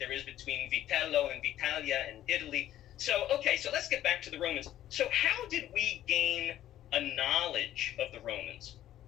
is between Vitello and Vitalia and Italy. So so let's get back to the Romans. So how did we gain a knowledge of the Romans?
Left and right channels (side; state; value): right; quieter; 12.7 dB